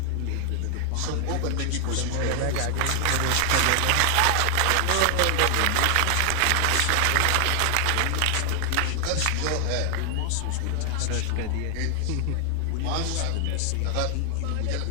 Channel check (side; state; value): both; different; correlation 0.00